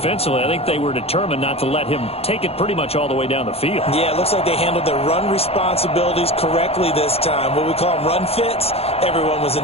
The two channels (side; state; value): right; late; 0.29 ms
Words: I think they were determined not to let him take it pretty much all the way down the field. Yeah, it looks like they handled their run responsibilities correctly this time. What we call them run fits, everyone was in